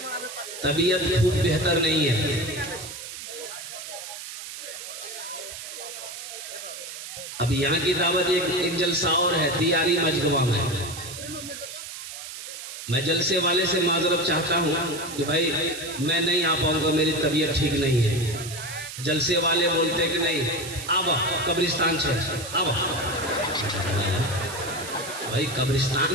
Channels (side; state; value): right; noise; hiss, 10 dB below the sound